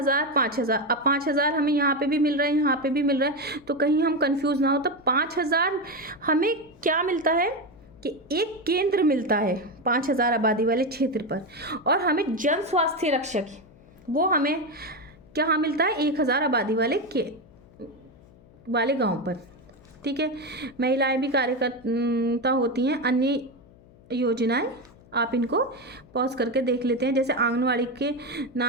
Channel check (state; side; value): noise; left; hum, 25 dB below the sound